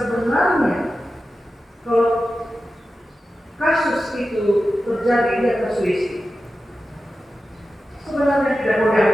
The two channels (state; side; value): normal; both; correlation 0.92